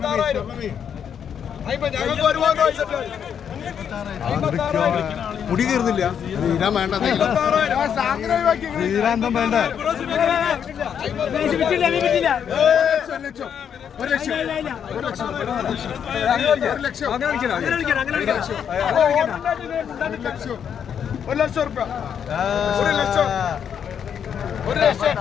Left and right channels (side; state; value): right; quieter; 8.1 dB